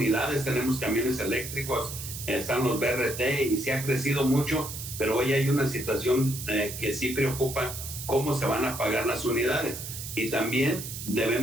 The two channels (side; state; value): right; noise; hiss, 8 dB below the sound